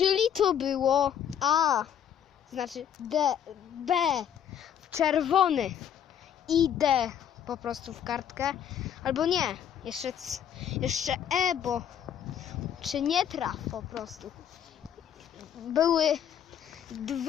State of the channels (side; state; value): right; quieter; 9.2 dB